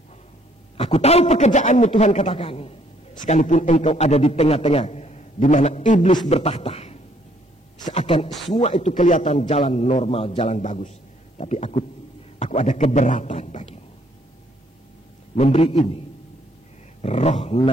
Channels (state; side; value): normal; both; correlation 0.65